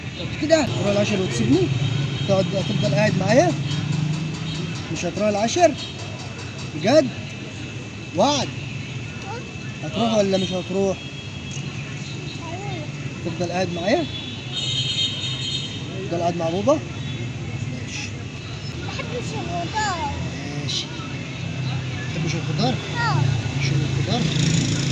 كده تروح العشر وتسيبني؟ تفضل قاعد معايا؟ مش هتروح العشر؟ بجد؟ وعد؟ هتروح ولا مش هتروح؟ تفضل قاعد معايا؟ تفضل قاعد مع بابا؟ ماشي. بحبش الخضار. ماشي. تحبش الخضار؟ اه. شيل الخضار.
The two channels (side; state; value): both; identical; correlation 1.00